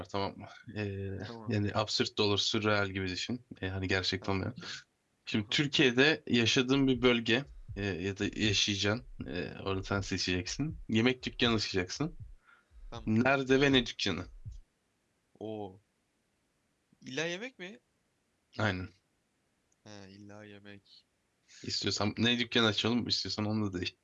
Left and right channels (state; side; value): identical; both; correlation 1.00